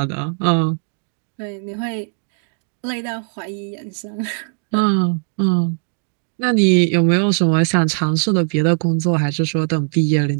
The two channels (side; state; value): left; silent; 66 dB below the other